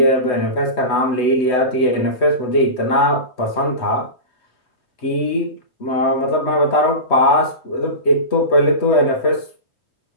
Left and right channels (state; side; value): late; right; 3.2 ms